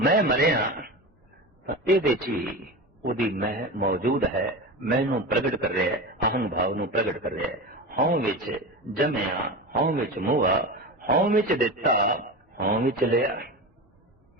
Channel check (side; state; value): both; normal; correlation 0.26